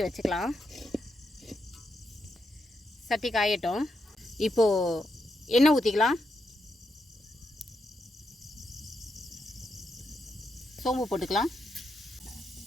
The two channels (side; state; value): both; normal; correlation 0.83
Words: வச்சுக்கலாம். சட்டி காயட்டும். இப்போது எண்ணெய் ஊற்றிக்கலாம். சோம்பு போட்டுக்கலாம்.